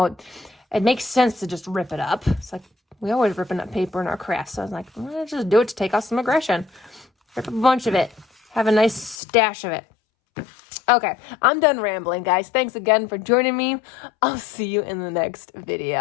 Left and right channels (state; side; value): drops out; right; at 9.2 s